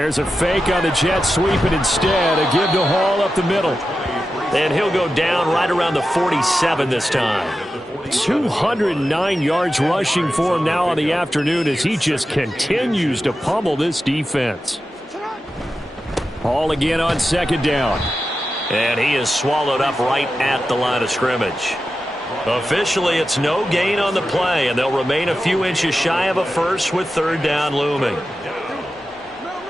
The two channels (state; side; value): normal; both; correlation 0.91